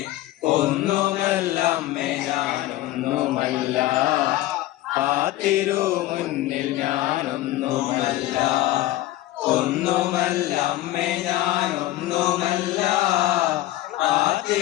ഒന്നുമല്ലമ്മേ ഞാനൊന്നുമല്ല, ആ തിരുമുന്നിൽ ഞാനൊന്നുമല്ല. ഒന്നുമല്ലമ്മേ ഞാനൊന്നുമല്ല, ആ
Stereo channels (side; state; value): right; quieter; 15.7 dB